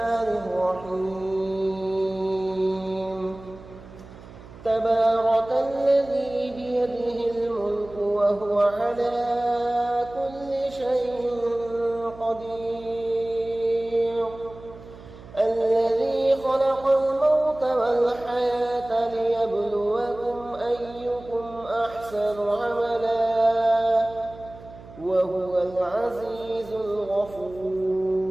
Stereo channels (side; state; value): right; noise; hum, 18 dB below the sound